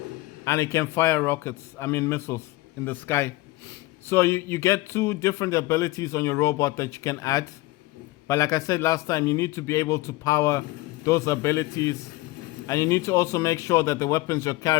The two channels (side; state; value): right; quieter; 19.4 dB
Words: and it can fire missiles in the sky. So you get 2 different abilities on your robot that you can add. But like I said last time, you need to be able to power those abilities, and you need to also make sure that the weapons you're